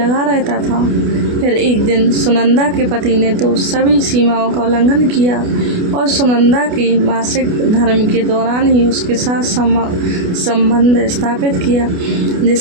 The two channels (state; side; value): late; left; 28 ms